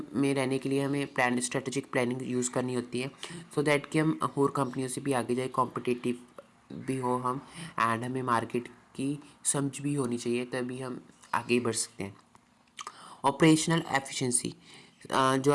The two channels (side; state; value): both; identical; correlation 1.00